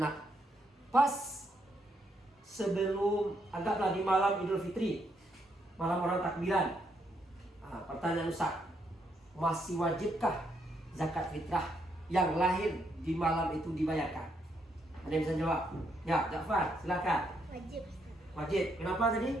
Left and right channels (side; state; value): both; normal; correlation 0.76